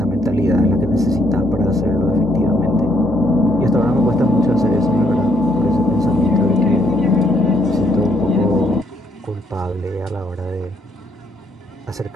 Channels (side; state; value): both; normal; correlation 0.72